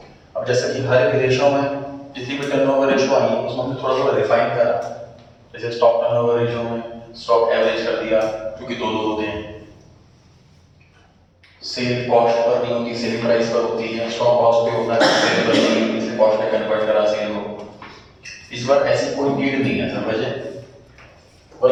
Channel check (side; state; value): both; identical; correlation 1.00